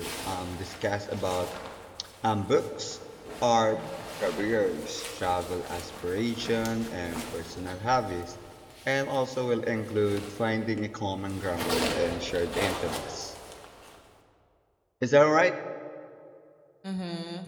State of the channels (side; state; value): both; identical; correlation 1.00